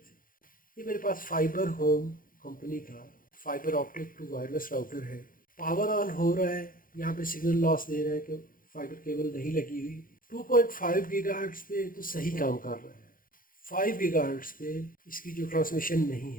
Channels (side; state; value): right; late; 0.40 ms